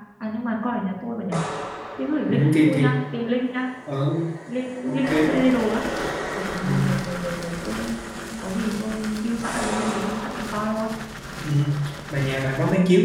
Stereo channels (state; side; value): identical; both; correlation 1.00